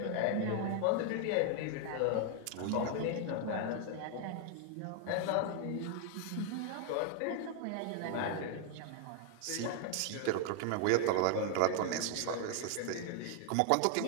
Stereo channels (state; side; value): different; both; correlation 0.00